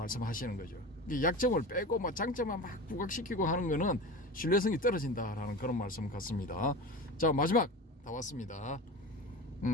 거죠. 이 약점을 빼고 뭐 장점만 막 부각시키고 하는 거는 신뢰성이 떨어진다라는 그런 말씀 같습니다. 자, 마지막 다 왔습니다.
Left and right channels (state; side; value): normal; both; correlation 0.30